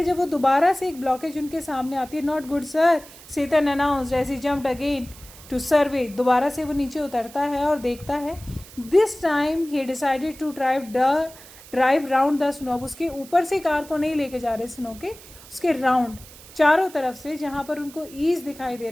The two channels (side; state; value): right; noise; hiss, 19 dB below the sound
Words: जब वो दोबारा से एक ब्लॉकेज उनके सामने आती है, not good sir, Satan announced as he jumped again to survey. दोबारा से वो नीचे उतरता है और देखता है. This time he decided to drive round the snow. उसके ऊपर से कार को नहीं लेके जा रहे स्नो के, उसके राउंड चारों तरफ से जहाँ पर उनको ईज दिखाई दे